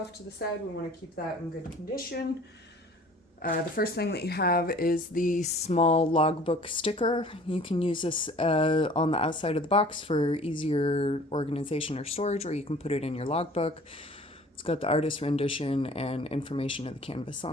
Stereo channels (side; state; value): both; normal; correlation 0.49